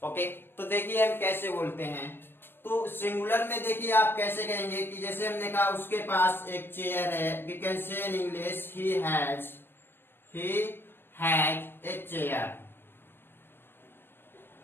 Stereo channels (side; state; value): right; late; 0.10 ms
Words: Okay, तो देखिए हम कैसे बोलते हैं। तो सिंगुलर में देखिए आप कैसे कहेंगे कि जैसे हमने कहा उसके पास एक चेयर है, we can say in English he has a chair.